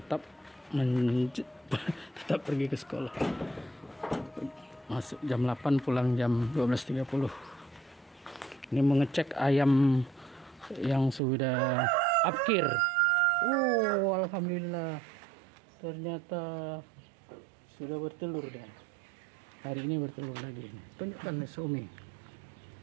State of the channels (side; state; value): left; drops out; at 11.2 s